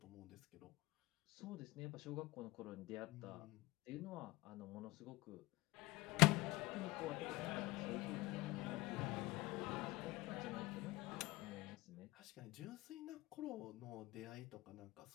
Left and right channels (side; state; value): right; quieter; 20.8 dB